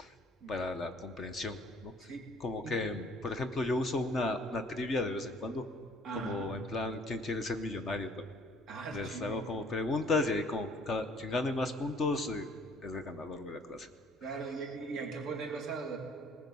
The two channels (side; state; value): both; normal; correlation 0.57